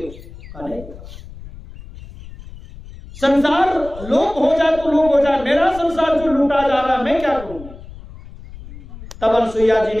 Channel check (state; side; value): noise; left; rumble, 16 dB below the sound